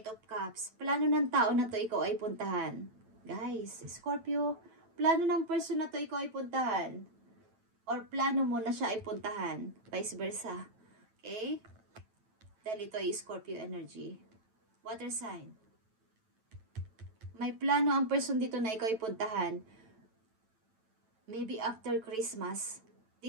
of Cups. Plano ng tao na to ikaw ay puntahan. Guys, Scorpio, plano ng person na to ikaw ay puntahan. Or plano mo na siya ay puntahan. Vice versa. Okay? Dahil ito ay Scorpio energy. Water sign. May plano ang person dito na ikaw ay puntahan. Maybe after Christmas.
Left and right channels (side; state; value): left; late; 9.1 ms